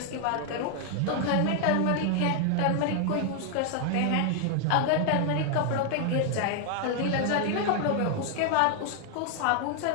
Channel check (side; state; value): both; different; correlation 0.00